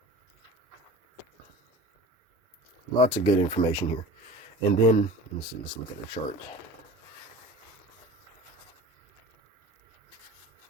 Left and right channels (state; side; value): normal; both; correlation 0.38